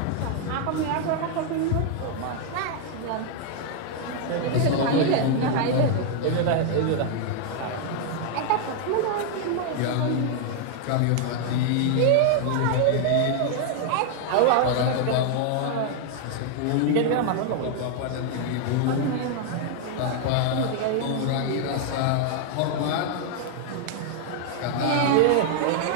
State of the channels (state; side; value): different; both; correlation 0.00